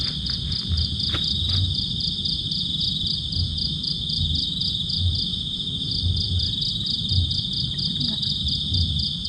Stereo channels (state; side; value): identical; both; correlation 1.00